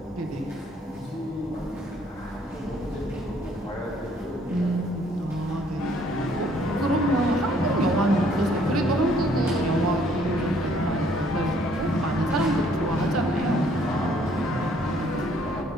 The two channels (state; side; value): normal; both; correlation 0.63